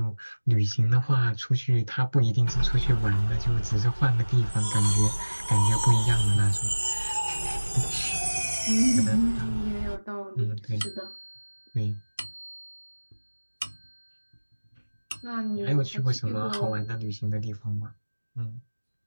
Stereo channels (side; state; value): both; inverted; correlation -1.00